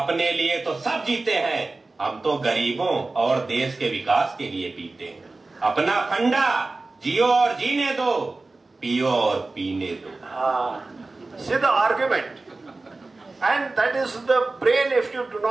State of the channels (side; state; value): left; quieter; 3.4 dB